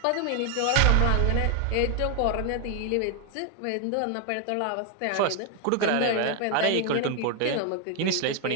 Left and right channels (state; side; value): different; both; correlation 0.00